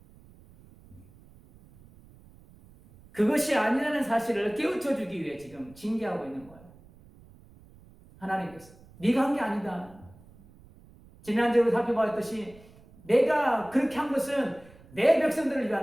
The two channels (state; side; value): noise; right; rumble, 24 dB below the sound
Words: 그것이 아니라는 사실을 깨우쳐주기 위해 지금 징계하고 있는 거예요. 하나님께서 네가 한 게 아니다. 지난주에 살펴봤듯이 내가 그렇게 한 것은 내 백성들을